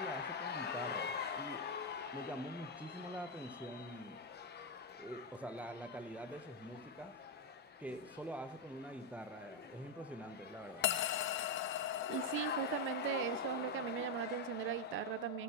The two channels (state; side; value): normal; both; correlation 0.04